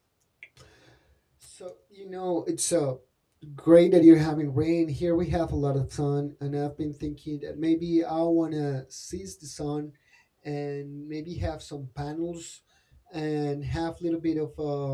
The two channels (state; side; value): identical; both; correlation 1.00